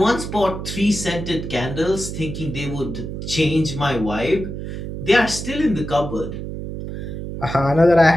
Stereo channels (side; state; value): right; noise; hum, 7 dB below the sound